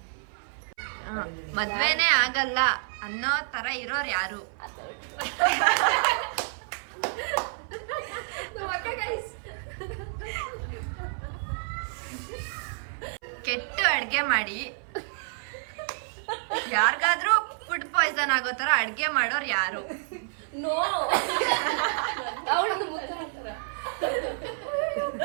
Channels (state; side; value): silent; left; 56 dB below the other